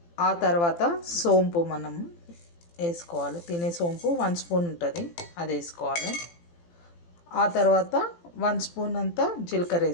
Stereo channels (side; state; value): right; late; 18 ms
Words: ఆ తర్వాత సోంపు మనం వేసుకోవాలి. తినే సోంపు 1 స్పూన్ ఉంటుంది, అది వేసుకోవాలి. ఆ తర్వాత 1 స్పూన్ అంతా జీలకర్ర